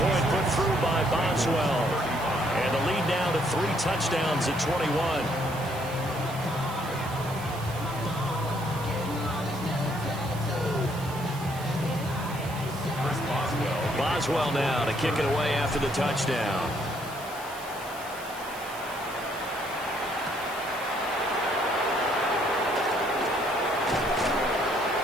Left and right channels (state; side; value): noise; right; hiss, 16 dB below the sound